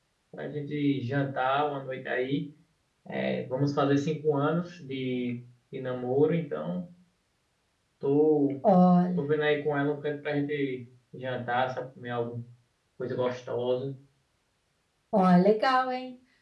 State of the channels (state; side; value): identical; both; correlation 1.00